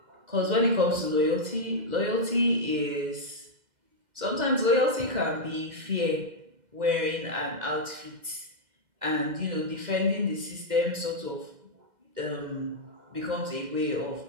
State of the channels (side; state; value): left; late; 2.0 ms